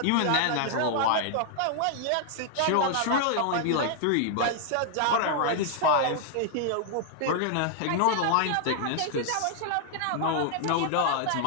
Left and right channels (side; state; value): both; different; correlation 0.00